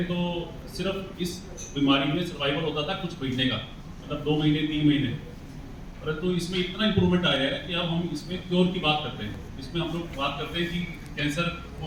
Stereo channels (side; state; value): both; identical; correlation 1.00